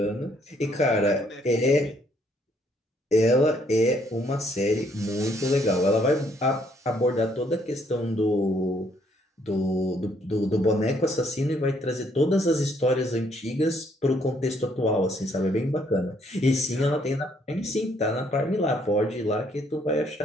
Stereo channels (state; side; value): normal; both; correlation 0.68